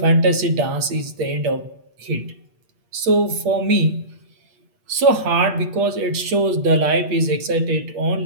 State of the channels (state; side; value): late; left; 8.3 ms